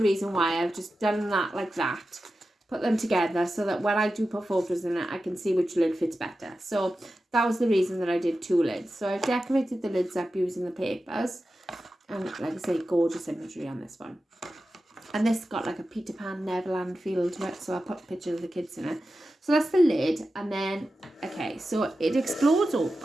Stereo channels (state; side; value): normal; both; correlation 0.92